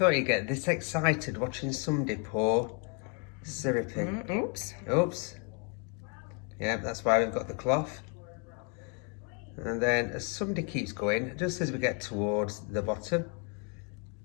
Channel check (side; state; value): right; quieter; 37.3 dB